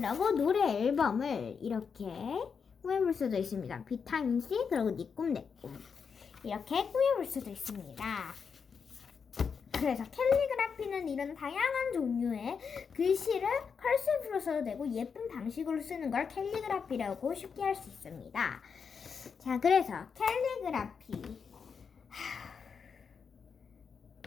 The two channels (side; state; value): right; quieter; 6.1 dB